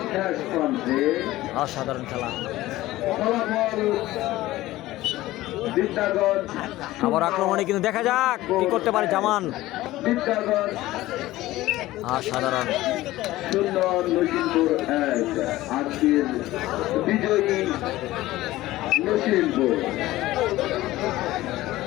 শেষ প্রান্তে অসাধারণ খেলা। ফলাফল বিদ্যাগঞ্জ আবার আক্রমণে কিন্তু দেখা যাক কি করতে পারে জামান। বিদ্যাগঞ্জ অসাধারণ, শূন্য নসিমপুর 1। আজকের বিজয়ী নসিমপুর।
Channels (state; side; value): quieter; right; 16.8 dB